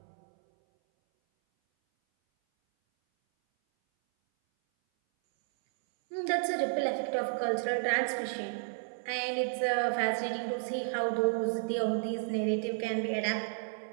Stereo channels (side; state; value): left; silent; 56 dB below the other